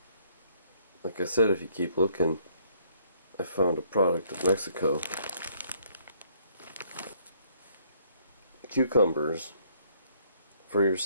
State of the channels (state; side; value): inverted; both; correlation -0.65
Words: like I said, if you keep looking, I found a product of Mexico. Cucumbers for your